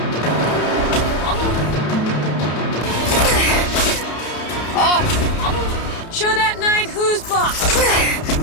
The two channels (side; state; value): right; late; 31 ms